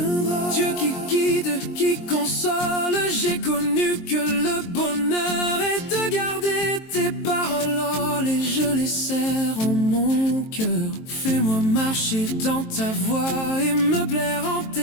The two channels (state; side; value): late; right; 23 ms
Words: Dieu qui guide, qui console, j'ai connu que le bonheur est de garder tes paroles. Oh, et je les serre en mon cœur. Fais-moi marcher dans ta voie et me plaire en